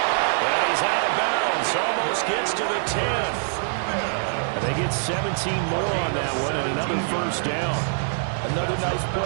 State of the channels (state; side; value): silent; left; 62 dB below the other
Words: And he's out of bounds. Almost gets to the 10. And they get 17 more on that one and another 1st down. Another nice